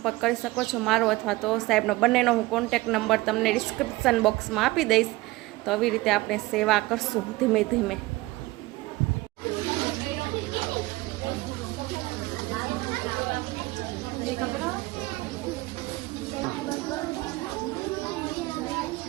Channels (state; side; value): quieter; left; 20.2 dB